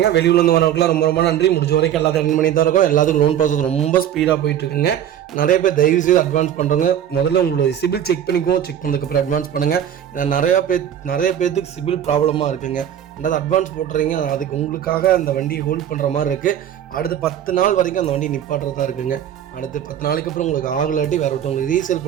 வெளியூர்லேருந்து வரவங்களுக்குலாம் ரொம்ப நன்றி. முடிஞ்ச வரைக்கும் எல்லாத்தையும் ரன் பண்ணி தான் இருக்கோம். எல்லாத்துக்கும் லோன் ப்ராசஸ் ரொம்ப ஸ்பீடாக போயிட்டு இருக்குங்க. நிறைய பேர் தயவு செய்து அட்வான்ஸ் பண்ணுறங்க. முதல்ல உங்களோட சிபில் செக் பண்ணதுக்கப்புறம் அட்வான்ஸ் பண்ணுங்க. ஏன்னா நிறைய பேர்த்துக்கு சிபில் ப்ராப்ளமாக இருக்குங்க. அதாவது அட்வான்ஸ் போட்டுறீங்க, அதுக்கு உங்களுக்காக அந்த வண்டியை ஹோல்ட் பண்ணுற மாதிரி இருக்குது. அடுத்து 10 நாள் வரைக்கும் அந்த வண்டி நிப்பாட்டுறதா இருக்குங்க. அடுத்து 10 நாளைக்கு அப்புறம் உங்களுக்கு ஆகலாட்டி வேறு ஒருத்தவங்களுக்கு ரீசேல்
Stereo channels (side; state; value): left; quieter; 10.1 dB